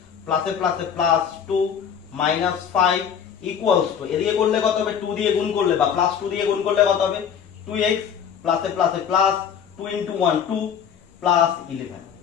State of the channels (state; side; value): quieter; right; 7.9 dB